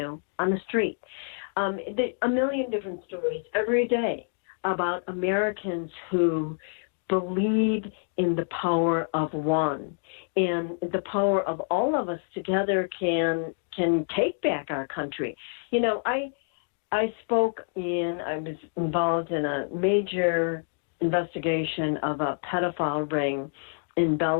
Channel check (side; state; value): right; silent; digital silence